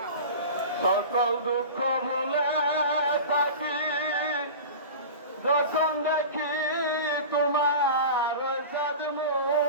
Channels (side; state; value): both; inverted; correlation -0.33